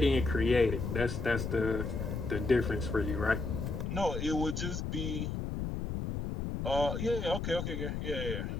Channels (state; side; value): noise; left; rumble, 3 dB below the sound